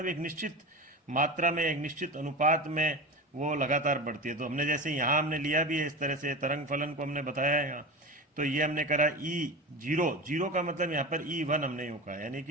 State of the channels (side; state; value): both; normal; correlation 0.27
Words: एक निश्चित मात्रा में, एक निश्चित अनुपात में वो लगातार बढ़ती है। तो हमने जैसे यहाँ हमने लिया भी है इस तरह से, तरंग फलन को हमने बताया है यहाँ। तो ये हमने करा E0 का मतलब यहाँ पर E1 हमने यूँ कहा, यानी